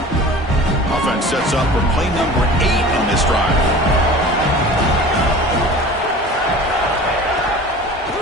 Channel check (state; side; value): normal; both; correlation 0.40